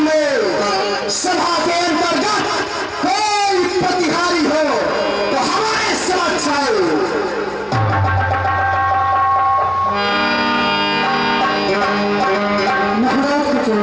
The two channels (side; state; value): both; identical; correlation 1.00